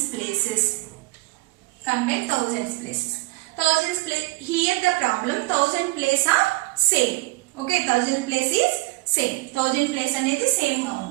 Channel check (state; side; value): quieter; left; 23.2 dB